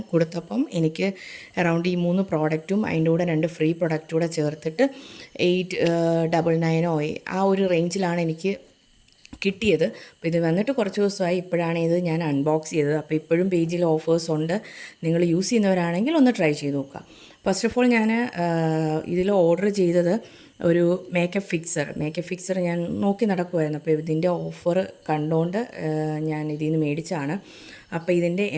കൊടുത്തപ്പം എനിക്ക് അറൗണ്ട് ഈ 3 പ്രോഡക്റ്റും അതിൻ്റെ കൂടെ 2 ഫ്രീ പ്രൊഡക്റ്റ് കൂടെ ചേർത്തിട്ട് 899 ആ ഒരു റേഞ്ചിലാണ് എനിക്ക് കിട്ടിയത്. അപ്പോൾ ഇത് വന്നിട്ട് കുറച്ച് ദിവസമായി. ഇപ്പോഴാണ് ഇത് ഞാൻ അൺബോക്സ് ചെയ്തത്. അപ്പോൾ ഇപ്പോഴും പേജിൽ ഓഫേഴ്സ് ഉണ്ട്. നിങ്ങൾ യൂസ് ചെയ്യുന്നവരാണെങ്കിൽ ഒന്ന് ട്രൈ ചെയ്ത് നോക്കുക. ഫസ്റ്റ് ഓഫ് ഓൾ ഞാൻ ഇതിൽ ഓർഡർ ചെയ്തത് ഒരു മേക്കപ്പ് ഫിക്സർ ഞാൻ നോക്കി നടക്കുമായിരുന്നു. അപ്പോൾ ഇതിൻ്റെ ഓഫർ കണ്ടുകൊണ്ട് ഞാൻ ഇതിൽ നിന്ന് മേടിച്ചാണ്. അപ്പോൾ ഇതിൻ്റെ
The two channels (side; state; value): both; identical; correlation 1.00